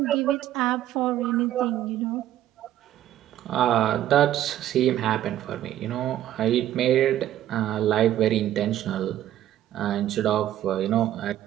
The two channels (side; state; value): left; quieter; 12.5 dB